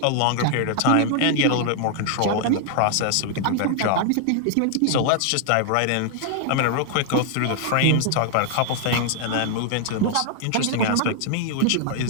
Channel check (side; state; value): both; different; correlation 0.00